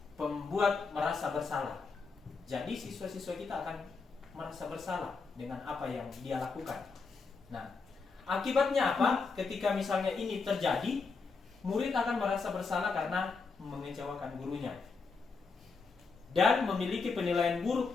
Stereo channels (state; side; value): quieter; right; 4.6 dB